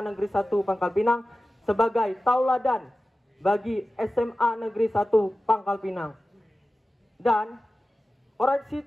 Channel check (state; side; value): normal; both; correlation 0.95